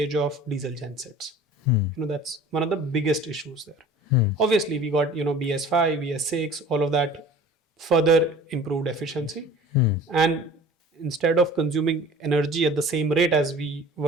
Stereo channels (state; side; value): normal; both; correlation 0.44